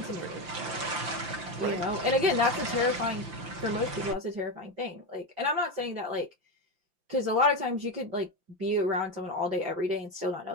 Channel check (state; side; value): late; left; 5.8 ms